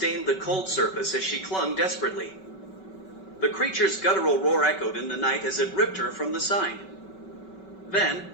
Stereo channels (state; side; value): late; right; 5.3 ms